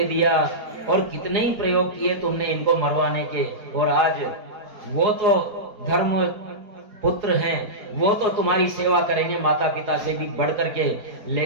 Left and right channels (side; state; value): left; late; 4.8 ms